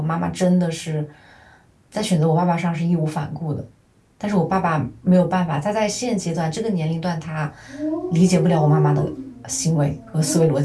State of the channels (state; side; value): identical; both; correlation 1.00